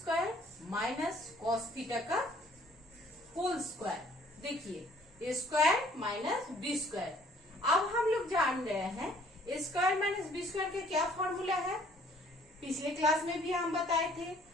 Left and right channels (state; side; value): normal; both; correlation 0.59